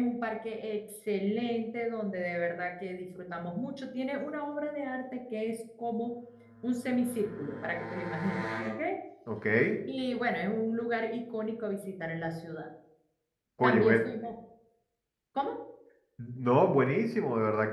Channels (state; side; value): identical; both; correlation 1.00